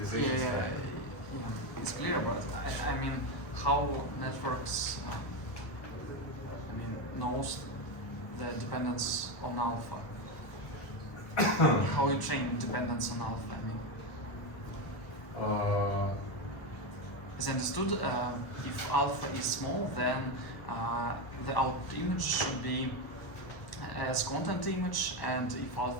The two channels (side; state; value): right; late; 1.3 ms